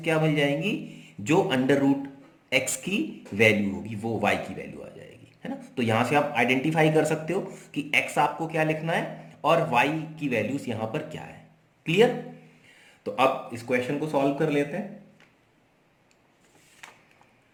क्या मिल जाएंगी, जो अंडर रूट x की वैल्यू होगी वो y की वैल्यू आ जाएगी, है ना. तो यहां से आप आइडेंटिफाई कर सकते हो कि x आपको क्या लिखना है और y की वैल्यूज यहां पर क्या है. क्लियर. तो अब इस क्वेश्चन को सॉल्व कर लेते हैं.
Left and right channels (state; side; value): identical; both; correlation 1.00